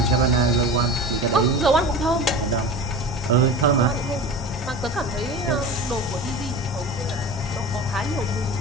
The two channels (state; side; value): normal; both; correlation 0.32